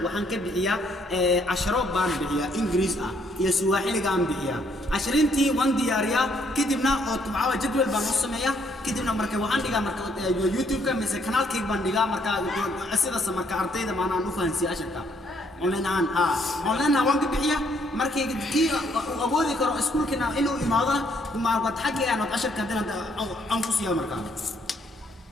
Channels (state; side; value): normal; both; correlation 0.69